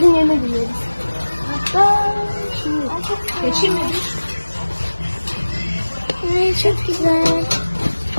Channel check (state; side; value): inverted; both; correlation -1.00